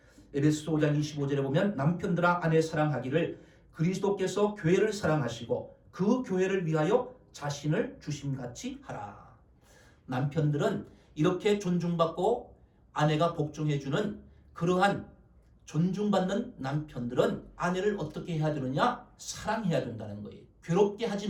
에베소서 5장 25절에 보면 남편들아 아내 사랑하기를 그리스도께서 교회를 사랑하시고 그 교회를 위하여 자신을 주심같이 하라. 남편들은 이렇게 존중받고 아내가 복종해주는 그러한 존중받는 남편들은 아내를 어떻게 해야 되느냐? 사랑해야 된다는 거예요. 괴롭게 하지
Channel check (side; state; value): both; identical; correlation 1.00